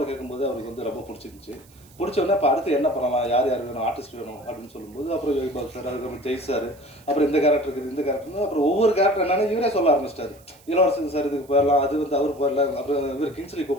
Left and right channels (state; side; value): noise; right; hiss, 27 dB below the sound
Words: கேட்கும்போது அவருக்கு வந்து ரொம்ப பிடிச்சிருந்துச்சு. பிடிச்சோடனே இப்போ அடுத்து என்ன பண்ணலாம், யார் வேணும், ஆர்டிஸ்ட் வேணும் அப்படின்னு சொல்லும்போது அப்புறம் யோகி பாபு சார், அதுக்கப்புறம் ஜெய் சார், அப்புறம் இந்த கேரக்டர் இருக்குது, இந்த கேரக்டர்னு அப்புறம் ஒவ்வொரு கேரக்டர் என்னன்னு இவரே சொல்ல ஆரம்பிச்சிட்டாரு. இளவரசன் சார் இதுக்கு போயிடலாம், அது வந்து அவர் போயிடலாம், அப்புறம் இவர் கிங்ஸ்லி